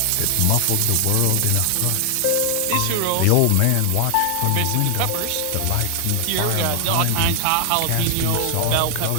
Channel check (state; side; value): different; both; correlation 0.00